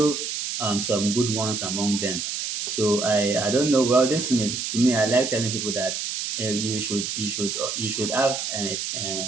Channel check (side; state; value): right; noise; hiss, 3 dB below the sound